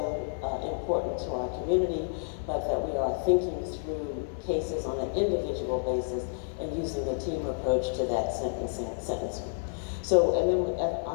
important to our community, but that we are thinking through cases on an individual basis and using a team approach to that sentencing. So, and then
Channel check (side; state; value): right; silent; digital silence